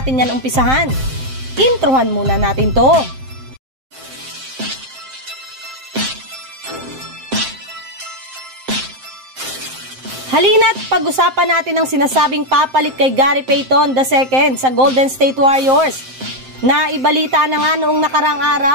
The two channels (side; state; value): left; late; 7.6 ms